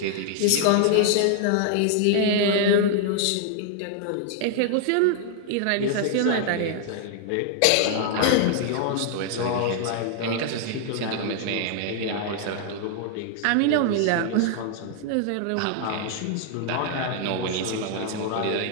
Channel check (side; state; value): both; different; correlation 0.00